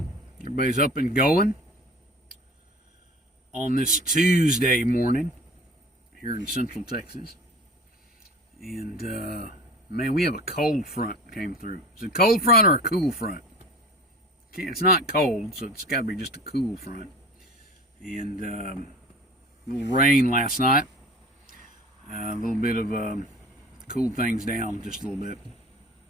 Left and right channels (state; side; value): normal; both; correlation 0.40